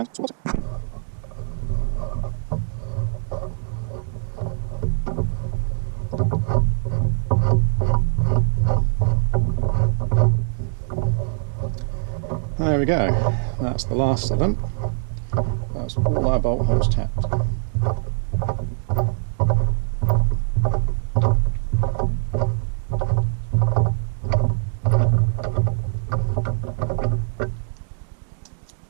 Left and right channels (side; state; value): left; silent; digital silence